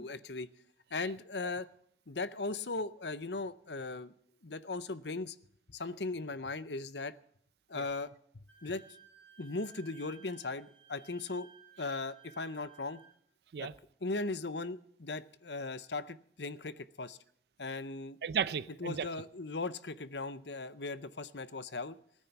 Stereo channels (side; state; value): both; normal; correlation -0.02